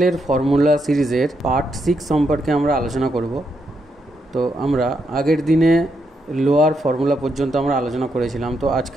ফর্মুলা সিরিজের পার্ট 6 সম্পর্কে আমরা আলোচনা করব। তো আমরা আগের দিনে লোয়ার ফর্মুলা পর্যন্ত আমরা আলোচনা করেছিলাম, তো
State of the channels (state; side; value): normal; both; correlation 0.80